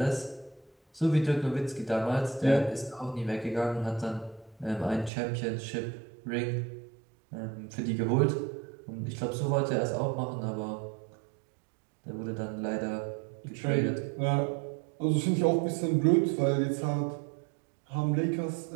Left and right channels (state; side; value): drops out; left; at 5.1 s